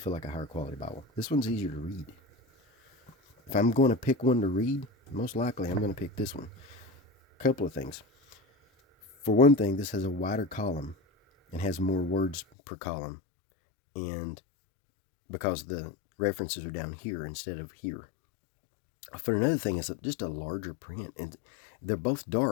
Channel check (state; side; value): drops out; right; at 12.4 s